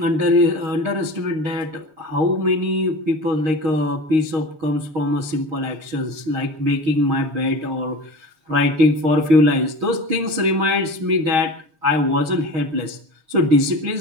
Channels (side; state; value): left; late; 6.4 ms